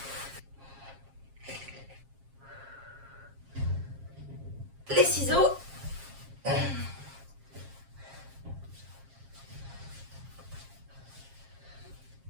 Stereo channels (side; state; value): left; late; 7.4 ms